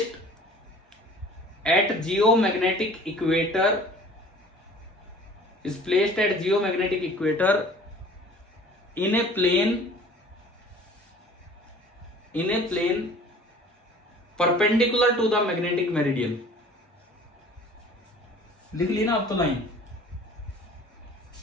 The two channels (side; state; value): both; normal; correlation 0.48